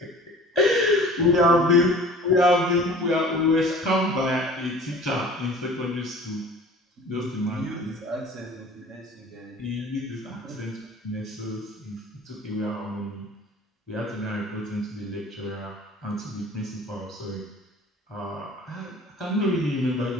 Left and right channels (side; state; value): both; normal; correlation 0.44